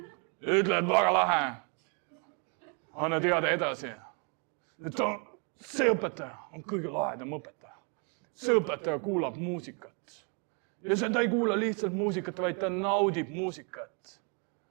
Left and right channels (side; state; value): left; quieter; 36.3 dB